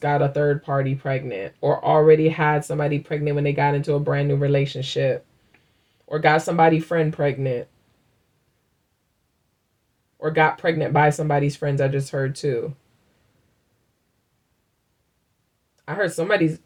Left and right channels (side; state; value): both; identical; correlation 1.00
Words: got a third party pregnant or already had somebody pregnant when they got into a brand new relationship or got somebody friend pregnant or got pregnant by somebody's friends. I just heard too. I heard somebody's,